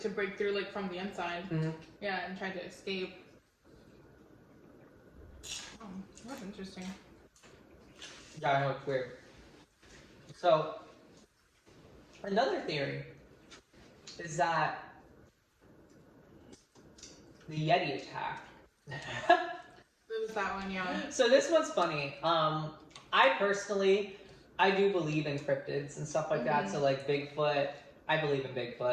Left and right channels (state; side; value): identical; both; correlation 1.00